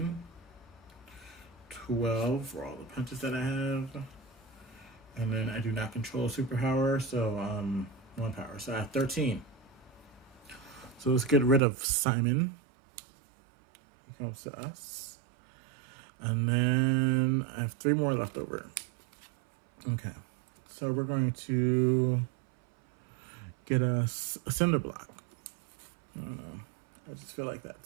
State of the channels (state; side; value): drops out; left; at 11.6 s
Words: 12 for all the punches that I have. And then I do not control superpower, so 1 power. So I have 13. So let's get rid of Simon. He comes to us. And then I have 3 more left over. Okay. So we're going to get us a cinder block. I don't know. I just feel like